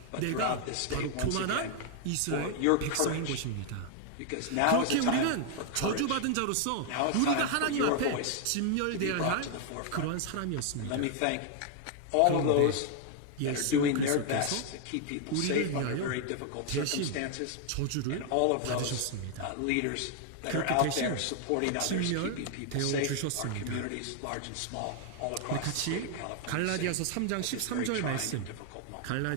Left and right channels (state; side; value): different; both; correlation 0.00